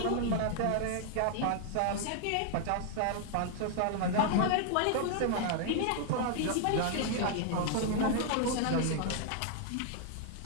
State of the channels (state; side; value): different; both; correlation 0.00